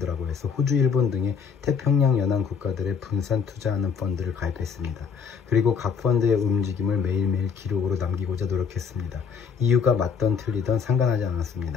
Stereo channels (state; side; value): quieter; right; 6.2 dB